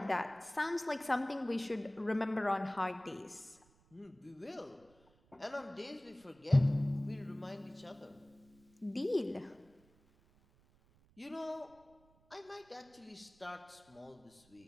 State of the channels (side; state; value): right; noise; rumble, 30 dB below the sound